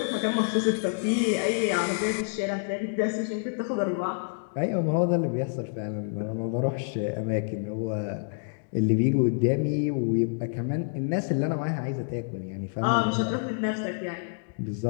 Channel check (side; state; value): right; silent; digital silence